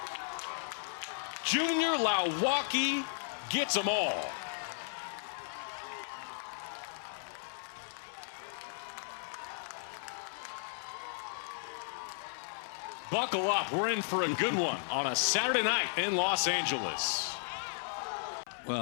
Junior Lawaki gets them all. buckle up. We're in for a good one on a Saturday night in Los Angeles.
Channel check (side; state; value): right; silent; 54 dB below the other